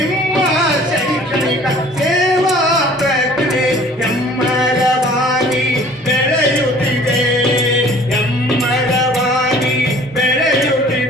ಶೈಕ್ಷಣಿಕ ಸೇವಾ ಪ್ರಜ್ಞೆ ಎಮ್ಮರವಾಗಿ ಬೆಳೆಯುತ್ತಿದೆ, ಎಮ್ಮರವಾಗಿ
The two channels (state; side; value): normal; both; correlation 0.51